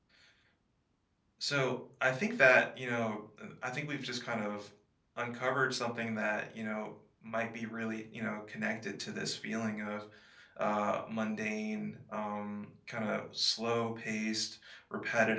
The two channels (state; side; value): identical; both; correlation 1.00